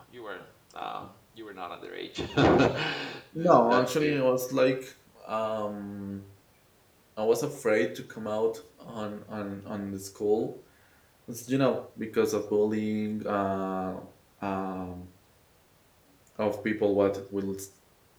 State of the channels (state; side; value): identical; both; correlation 1.00